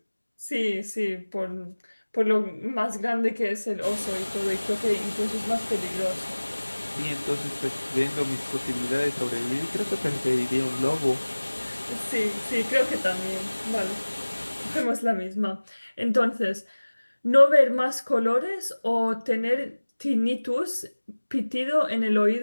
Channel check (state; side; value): inverted; both; correlation -1.00